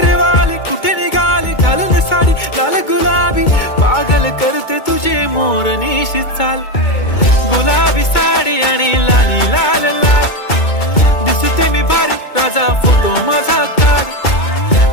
कुठे निघाली घालून साडी लाल गुलाबी, पागल करते तुझे मोरनीशी चाल. गुलाबी साडी आणि लाली लाल लाल, दिसते मी भारी राजा फोटो माझा काढ.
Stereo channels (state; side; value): late; right; 2.2 ms